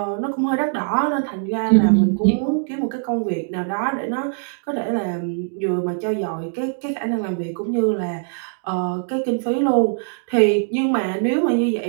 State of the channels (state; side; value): silent; left; 65 dB below the other